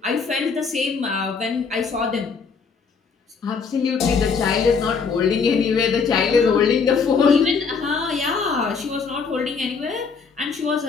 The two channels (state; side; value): quieter; right; 5.3 dB